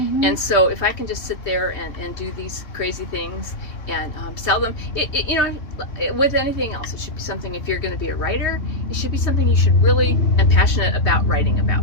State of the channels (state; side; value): late; right; 3.2 ms